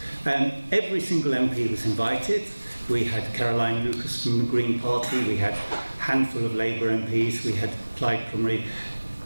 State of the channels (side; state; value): both; inverted; correlation -1.00